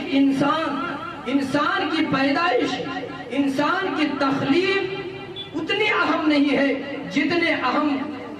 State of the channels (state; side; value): identical; both; correlation 1.00